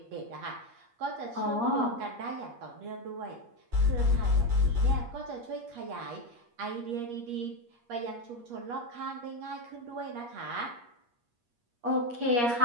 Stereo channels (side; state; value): left; late; 8.4 ms